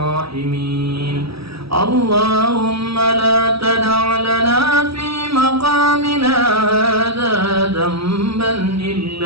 rahimin. Allahumma la tada' lana fi maqamina hadha dhanban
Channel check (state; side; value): late; left; 0.76 ms